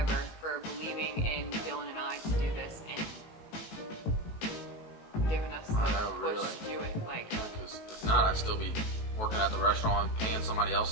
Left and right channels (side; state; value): right; late; 18 ms